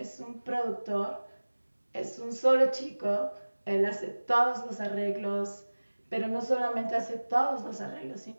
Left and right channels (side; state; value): both; inverted; correlation -1.00